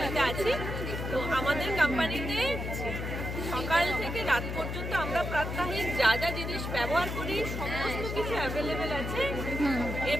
আছি। তো আমাদের কোম্পানিতে সকাল থেকে রাত পর্যন্ত আমরা প্রাত্যহিক যা যা জিনিস ব্যবহার করি সমস্ত কিছু অ্যাভেলেবেল আছে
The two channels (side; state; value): left; noise; hum, 4 dB below the sound